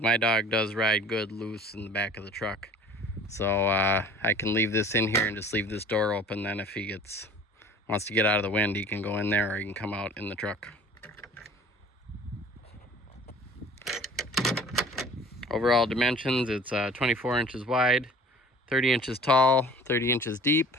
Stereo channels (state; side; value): normal; both; correlation 0.46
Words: dog does ride good loose in the back of the truck. So I can leave this in here and just leave this door open. Then if he wants to get out of the wind, he can go in there, or he can come out in the truck. Overall dimensions, it's 24 inches wide, 30 inches tall, 30 inches deep.